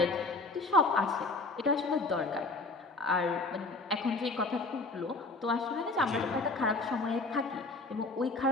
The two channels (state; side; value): quieter; right; 3.3 dB